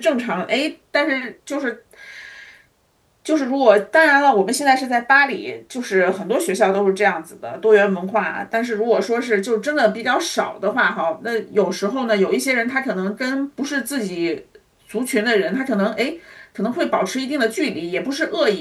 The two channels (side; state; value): both; identical; correlation 1.00